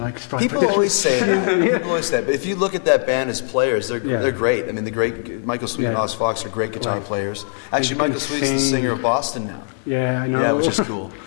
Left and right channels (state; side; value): silent; right; digital silence